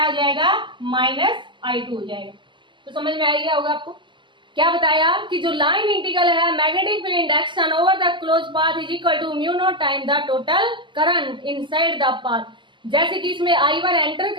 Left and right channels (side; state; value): left; late; 0.24 ms